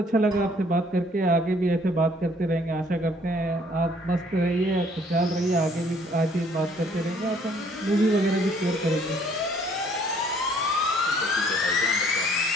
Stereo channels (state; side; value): normal; both; correlation 0.61